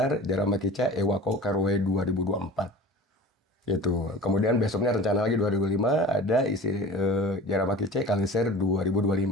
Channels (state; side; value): normal; both; correlation 0.40